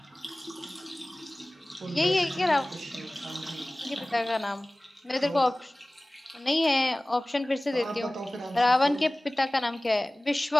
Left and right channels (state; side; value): normal; both; correlation 0.98